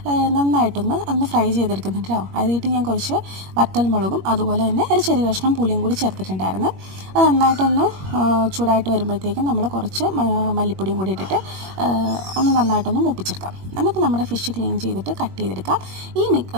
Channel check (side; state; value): left; late; 21 ms